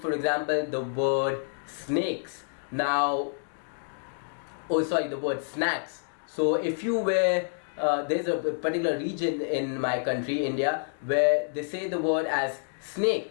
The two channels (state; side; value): silent; right; digital silence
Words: for example the word snakes. Now, the word snacks. So if you were there's a particular region in my country, India, where they say the word as